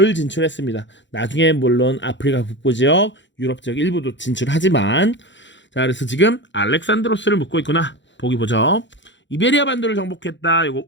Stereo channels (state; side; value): late; right; 0.54 ms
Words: 진출했습니다. 나중에 물론 아프리카 북부 지역, 유럽 지역 일부도 진출하지만, 자, 그래서 지금 알렉산드로스를 묻고 있구나. 보기 보죠. 이베리아 반도를 정복했다. 이거